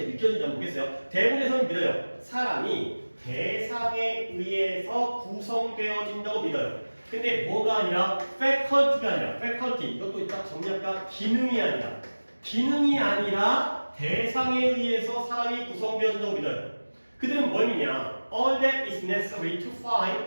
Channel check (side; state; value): both; inverted; correlation -1.00